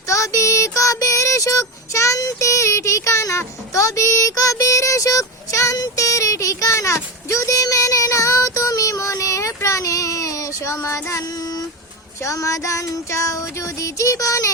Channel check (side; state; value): both; normal; correlation 0.18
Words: তবে কবির সুখ শান্তির ঠিকানা, তবে কবির সুখ শান্তির ঠিকানা, যদি মেনে নাও তুমি মনে প্রাণে। সমাধান চাও যদি